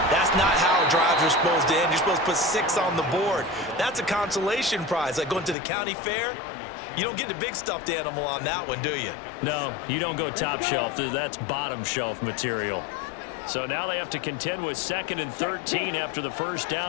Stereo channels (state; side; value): drops out; right; at 5.6 s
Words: that's not how drives are supposed to end. You're supposed to put 6 on the board. That's a consolation prize, like going to the county fair. You don't get the big stuffed animal on that one, do you? No, you don't go top shelf. That's bottom shelf material. So now they have to contend with 2nd and 13 after the first